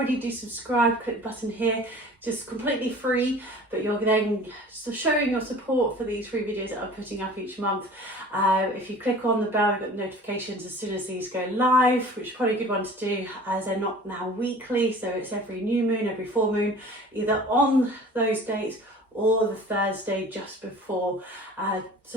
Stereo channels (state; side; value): normal; both; correlation 0.44